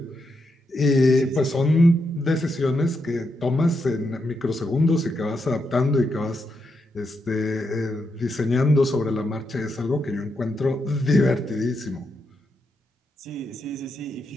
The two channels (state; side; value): normal; both; correlation 0.82